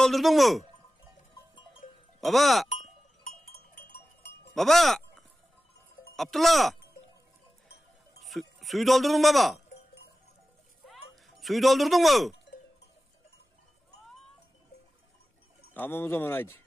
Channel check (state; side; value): normal; both; correlation 0.95